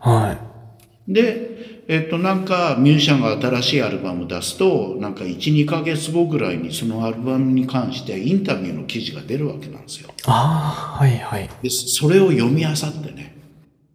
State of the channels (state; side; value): identical; both; correlation 1.00